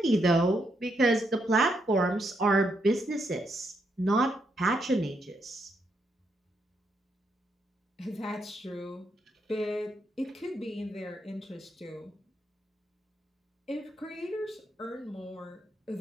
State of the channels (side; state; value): both; normal; correlation 0.78